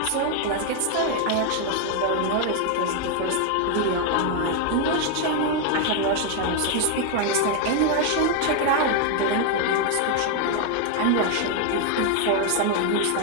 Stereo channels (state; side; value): different; both; correlation 0.01